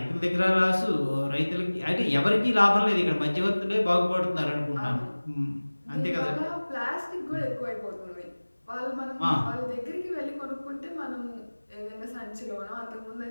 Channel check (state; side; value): inverted; both; correlation -1.00